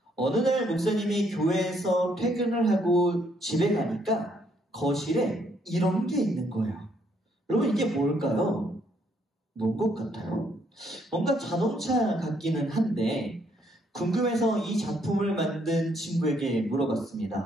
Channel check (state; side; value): normal; both; correlation 0.70